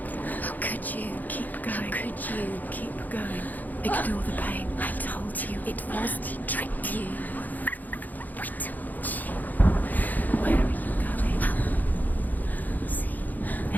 How could you? Keep going. How could you? Keep going. Ignore the pain. I told you. It was to trick you. I told you. Where are you going? See,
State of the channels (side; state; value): right; late; 0.083 ms